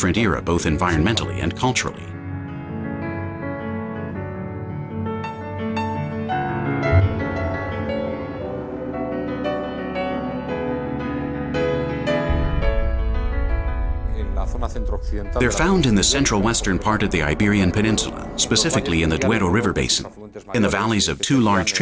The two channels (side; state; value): both; identical; correlation 1.00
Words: era both environmentally and culturally. They're found in the central western part of the Iberian Peninsula, specifically in the Duero River basin, in the valleys of two large